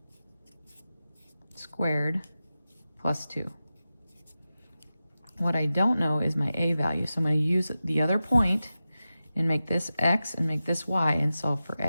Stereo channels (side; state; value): both; inverted; correlation -0.93